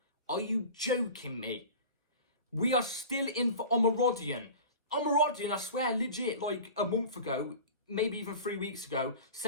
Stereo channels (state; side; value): inverted; both; correlation -0.37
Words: Are you joking me? We are still in for Omorodion. Omorodion, I swear, legit, like a month ago... maybe even 3 weeks ago,